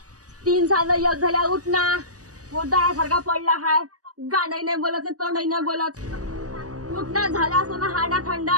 3 साल एक झाल्या. उठ ना. सारखा पडला हाय. गाणंही नाही बोलत तोंडही नाही बोलत. उठ ना. झाला असं ना हाडा थंडा.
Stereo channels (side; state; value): left; late; 0.67 ms